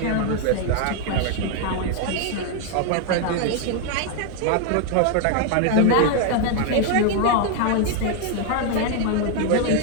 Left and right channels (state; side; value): different; both; correlation 0.00